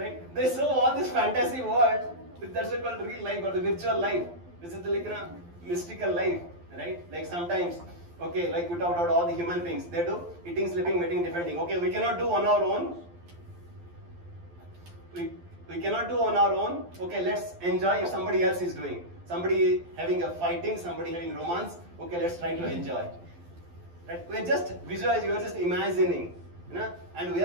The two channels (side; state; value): left; late; 12 ms